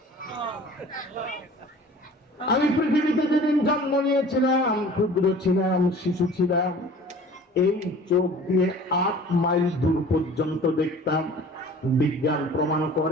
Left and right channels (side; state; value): both; normal; correlation 0.45